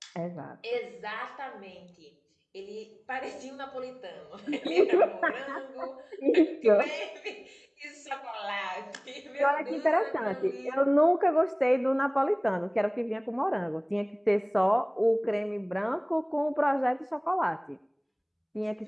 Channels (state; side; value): identical; both; correlation 1.00